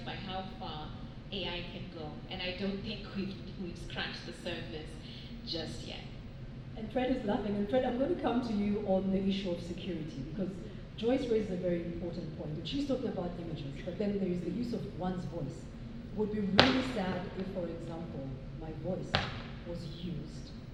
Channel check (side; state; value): both; identical; correlation 1.00